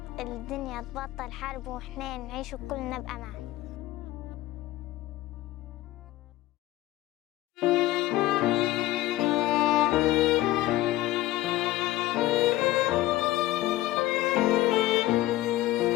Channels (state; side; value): quieter; right; 16.3 dB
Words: الدنيا تبطل حرب وإحنا نعيش وكلنا بأمان.